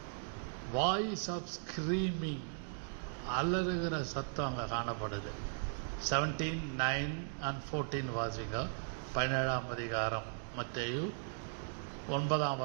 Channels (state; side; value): silent; left; digital silence